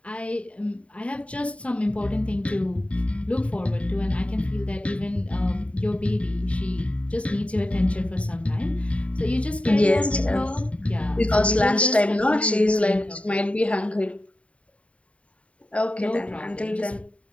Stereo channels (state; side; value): late; right; 0.064 ms